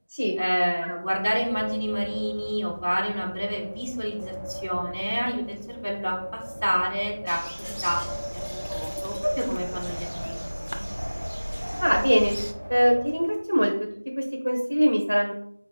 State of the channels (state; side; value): inverted; both; correlation -1.00